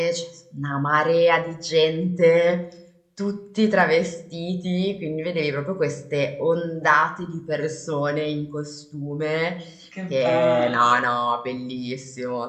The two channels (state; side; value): identical; both; correlation 1.00